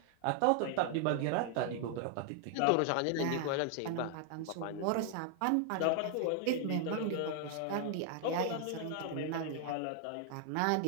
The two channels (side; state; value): both; different; correlation 0.00